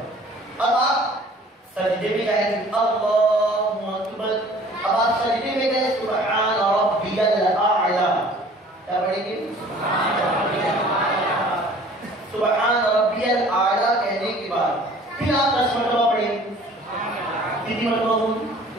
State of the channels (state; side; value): normal; both; correlation 0.50